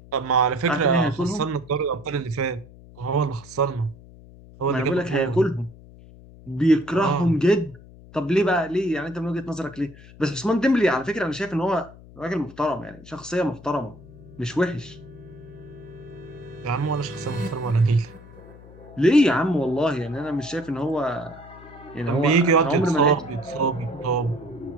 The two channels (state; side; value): noise; left; hum, 20 dB below the sound